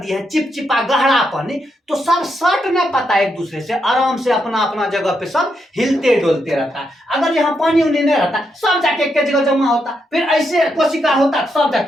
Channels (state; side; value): normal; both; correlation 0.81